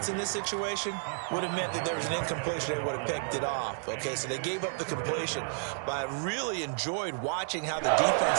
in this situation would have meant that there was an incompletion. They would have picked it off. Okay, so they gave up the completion. But I really enjoyed watching how the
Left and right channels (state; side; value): silent; left; digital silence